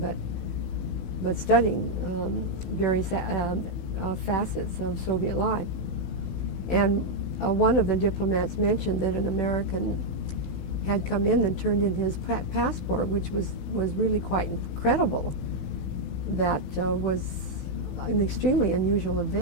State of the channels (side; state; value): right; late; 16 ms